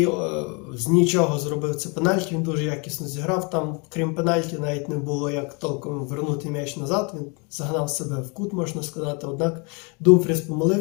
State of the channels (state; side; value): quieter; right; 32.5 dB